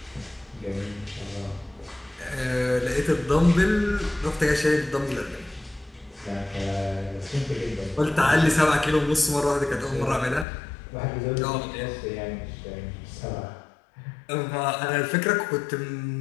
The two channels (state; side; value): drops out; right; at 10.5 s